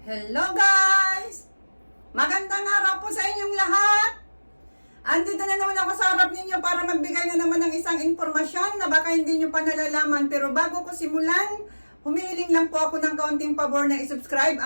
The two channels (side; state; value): both; inverted; correlation -1.00